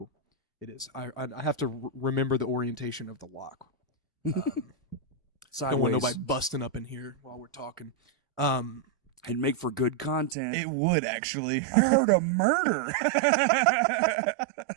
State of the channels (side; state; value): left; drops out; at 10.4 s